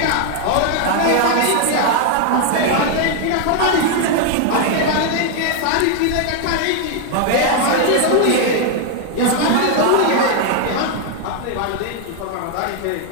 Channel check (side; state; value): both; different; correlation 0.00